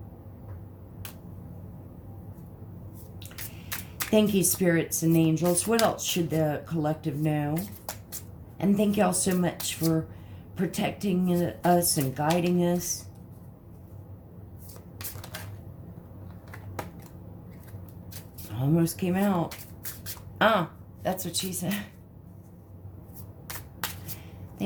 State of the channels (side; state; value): both; identical; correlation 1.00